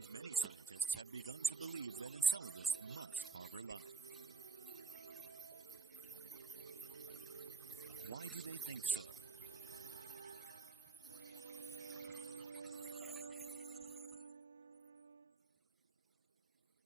many scientists have begun to believe that Enceladus must harbor life. Why do they think so?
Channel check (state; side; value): quieter; left; 4.6 dB